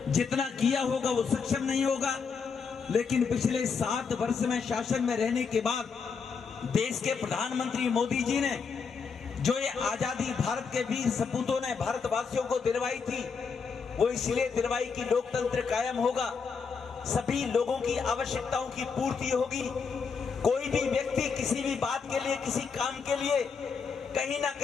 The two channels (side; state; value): right; quieter; 5.6 dB